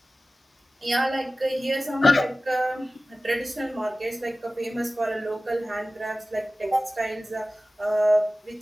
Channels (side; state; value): both; normal; correlation 0.96